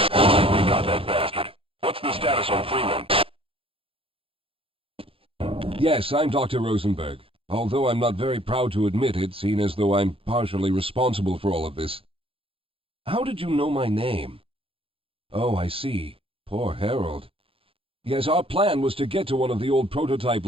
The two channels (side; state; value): left; late; 0.27 ms